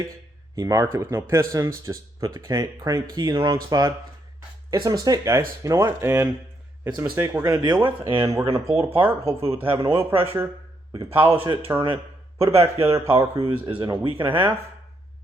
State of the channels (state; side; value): normal; both; correlation 0.76